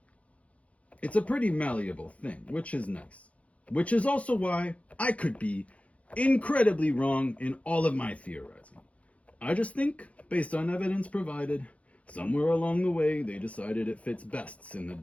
It's a pretty malleable thing, which is nice. Which is also why I could be incredibly wrong in all of my theorizing. I just think, based on evidence provided, somewhere along the way they decided it fits best in the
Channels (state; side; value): late; right; 0.065 ms